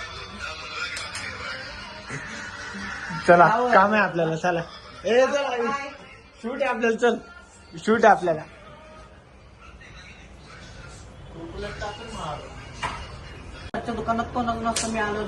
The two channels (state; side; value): identical; both; correlation 1.00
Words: चला काम आहे आपल्याला. चला शूट आहे आपल्याला. चल शूट आहे आपल्याला. दुकानात कोण नसतं. मी आलो